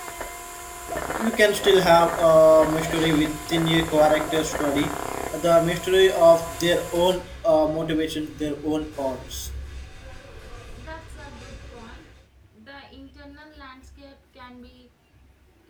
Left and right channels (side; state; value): both; identical; correlation 1.00